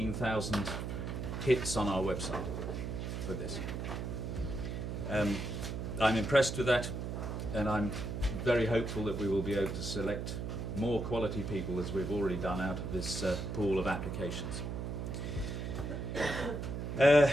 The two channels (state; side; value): noise; right; hum, 4 dB below the sound